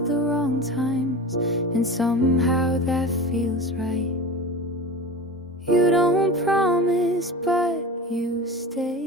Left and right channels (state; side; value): normal; both; correlation 0.31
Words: the wrong times, and somehow that feels right. You don't promise, but you